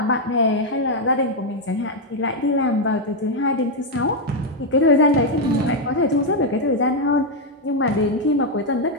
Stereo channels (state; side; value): normal; both; correlation 0.01